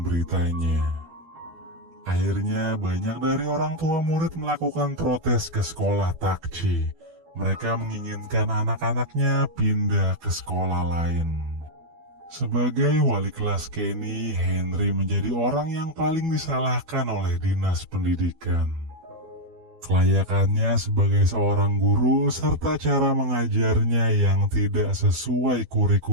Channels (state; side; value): late; left; 12 ms